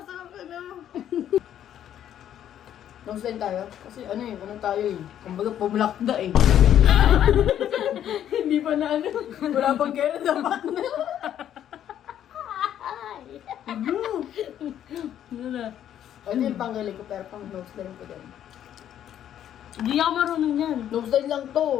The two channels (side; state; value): right; quieter; 10.6 dB